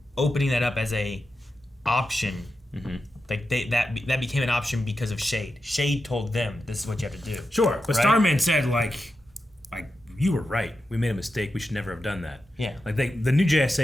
opening that up as a option. Like that became an option because of Shade. Shade told them this is what you have to do. Sure, but right? Starman said like you were right. We made a mistake. We should never have done that. Yeah. Like the new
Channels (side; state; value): both; normal; correlation 0.89